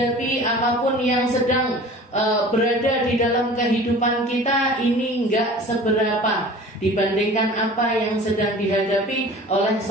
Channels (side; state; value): both; normal; correlation 0.42